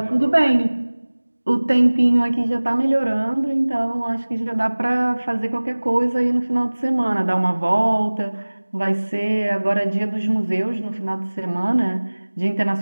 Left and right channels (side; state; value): both; inverted; correlation -1.00